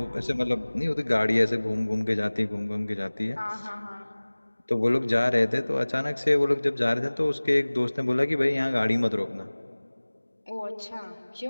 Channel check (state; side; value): inverted; both; correlation -1.00